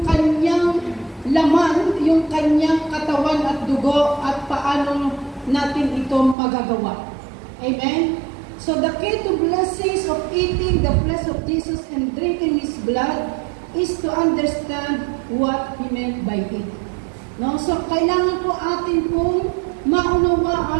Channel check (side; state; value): left; drops out; at 6.4 s